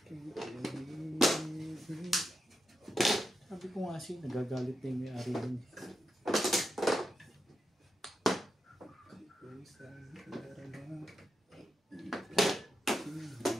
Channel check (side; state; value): both; normal; correlation 0.86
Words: Sabi ko nga siya, nagagalit na yung may-ari din.